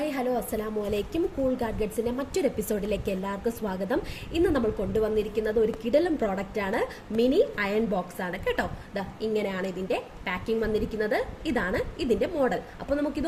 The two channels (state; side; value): identical; both; correlation 1.00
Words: hello അസ്സലാമു അലൈക്കും. Cool ഗാഡ്ഗറ്റ്സിന്റെ മറ്റൊരു എപ്പിസോഡിലേക്ക് എല്ലാവർക്കും സ്വാഗതം. ഇന്ന് നമ്മൾ കൊണ്ടുവന്നിരിക്കുന്നത് ഒരു കിടലം പ്രോഡക്റ്റ് ആണ്. മിനി അയൺ ബോക്സ് ആണ് കേട്ടോ. ഇങ്ങനെയാണ് ഇതിന്റെ പാക്കിംഗ് വന്നിരിക്കുന്നത്. ഇതാണ് ഇതിന്റെ മോഡൽ. അപ്പോൾ